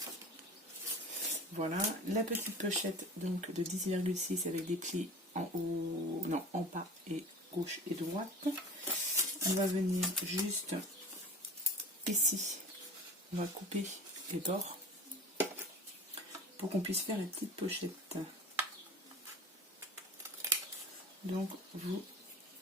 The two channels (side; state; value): both; normal; correlation 0.38